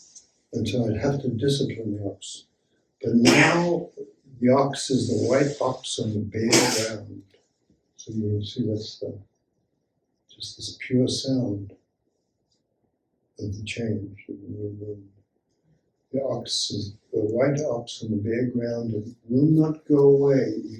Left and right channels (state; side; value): identical; both; correlation 1.00